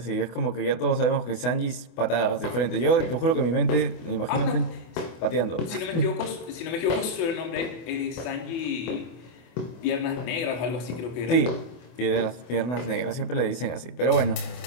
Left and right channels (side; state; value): right; late; 24 ms